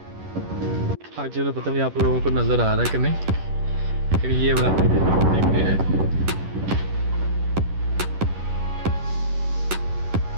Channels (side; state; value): left; late; 11 ms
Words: आगे तो पता नहीं आप लोगों को नजर आ रहा है कि नहीं, लेकिन ये वाला देखते हैं।